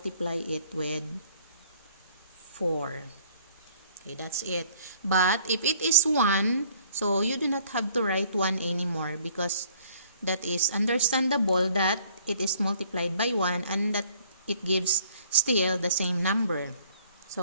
it with 4. Okay, that's it. But if it is 1, so you do not have to write 1 anymore, because that is understandable that it is multiplied by 1 and that it gives still the same number.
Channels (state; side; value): inverted; both; correlation -0.60